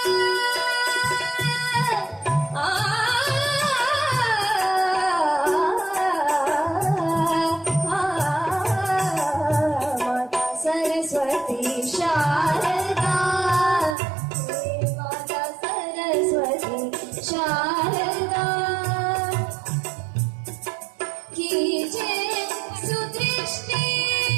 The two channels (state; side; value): drops out; left; at 14.0 s